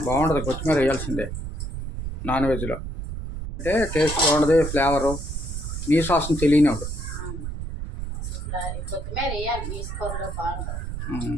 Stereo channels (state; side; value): noise; right; rumble, 6 dB below the sound